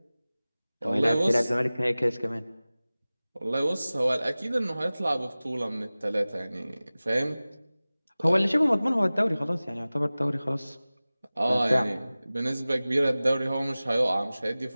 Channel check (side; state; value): both; inverted; correlation -0.98